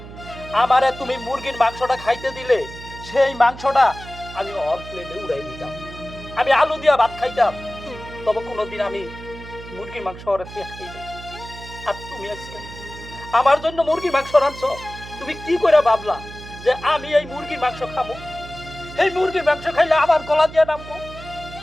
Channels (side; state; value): right; noise; hum, 14 dB below the sound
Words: আমারে তুমি মুরগির মাংসটা খাইতে দিলে সেই মাংসটা আমি অল প্লেটে উড়াই দিতাম, আমি আলু দিয়া ভাত খাইতাম। তবে কোনোদিন আমি মুরগির মাংস ওরে খাই নাই। আর তুমি আজকে আমার জন্য মুরগির মাংস রাঁধছ, তুমি কি করে ভাবলা যে আমি এই মুরগির মাংস খাবো? এই মুরগির মাংস খাইলে আমার গলা দিয়ে নামবো